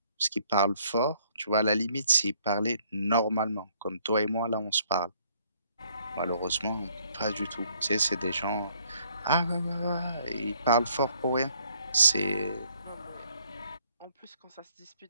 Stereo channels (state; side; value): inverted; both; correlation -0.65